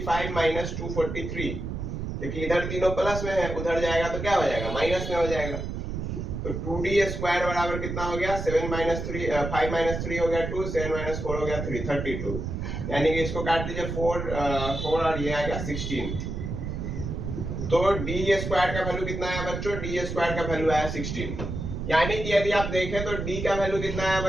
माइनस 243, क्योंकि इधर तीनों प्लस में है, उधर जाएगा तो क्या हो जाएगा माइनस में हो जाएगा। तो 2d स्क्वायर बराबर कितना हो गया 7 माइनस 3 5 माइनस 3 हो गया 2, 7 माइनस 4 हो गया 3, 32। यानी कि इसको काट दीजिए 4 और ये आएगा 16। तो d स्क्वायर का वैल्यू कितना आया बच्चों, d स्क्वायर का वैल्यू आया 16। यानी कि यदि आप देखें तो d का वैल्यू कितना आया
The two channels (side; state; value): right; noise; rumble, 5 dB below the sound